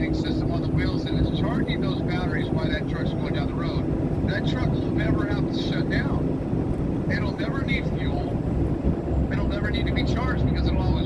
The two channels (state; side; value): identical; both; correlation 1.00